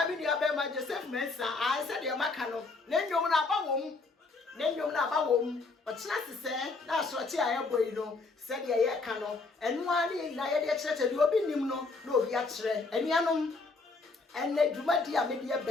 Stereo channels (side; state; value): right; quieter; 3.9 dB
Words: ni abema Joseph Mensa a se de maka no na nwom na aba wom otena sese na asochi ayeboyi no se de ye ka no enu ani na ye de kire de obi nim no na obi a kire enuanom enne dwumadi a mede